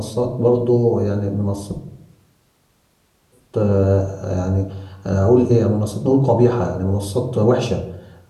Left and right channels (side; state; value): both; identical; correlation 1.00